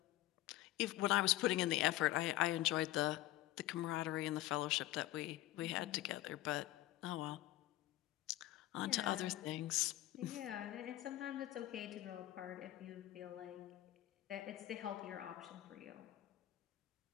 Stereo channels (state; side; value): quieter; right; 15.7 dB